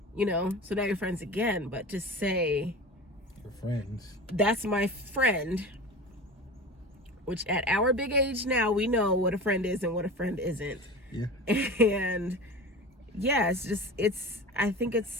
so now you're friends again. But to say you're friends, that's my friend, which at our big age now, we know what a friend is and what a friend isn't. Yeah. And yeah, I think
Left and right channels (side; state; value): both; normal; correlation 0.32